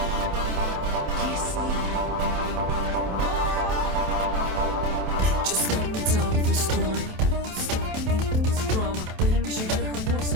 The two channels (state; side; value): late; left; 27 ms